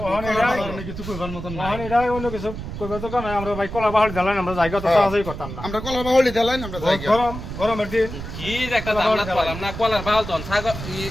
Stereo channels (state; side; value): noise; right; rumble, 9 dB below the sound